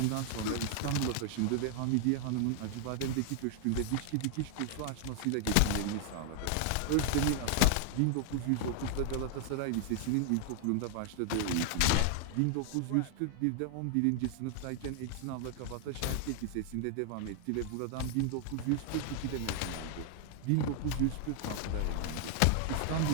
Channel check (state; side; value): different; both; correlation 0.00